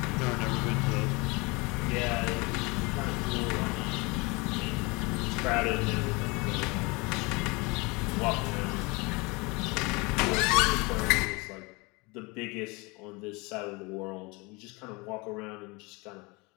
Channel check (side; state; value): right; quieter; 26.8 dB